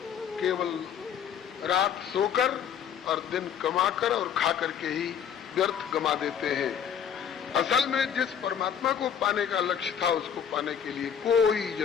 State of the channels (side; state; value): right; quieter; 8.2 dB